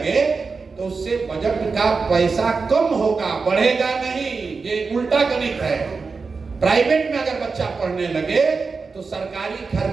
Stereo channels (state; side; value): quieter; left; 4.6 dB